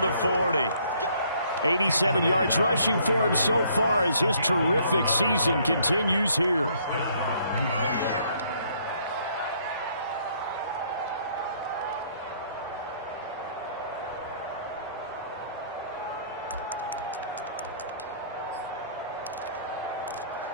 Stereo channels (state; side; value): inverted; both; correlation -0.64